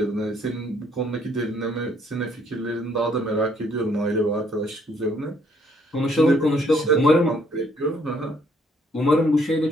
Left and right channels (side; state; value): both; normal; correlation 0.66